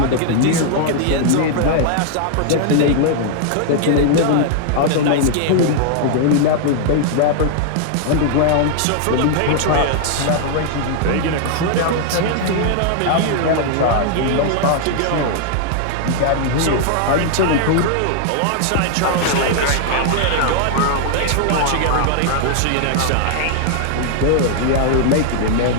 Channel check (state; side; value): different; both; correlation -0.01